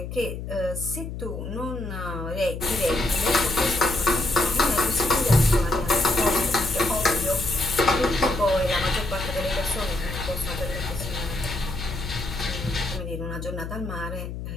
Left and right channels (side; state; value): left; noise; hum, 7 dB below the sound